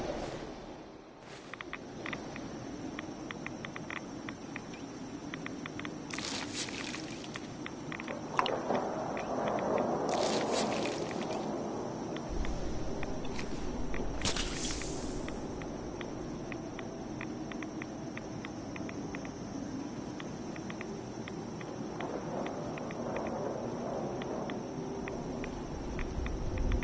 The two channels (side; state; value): both; identical; correlation 1.00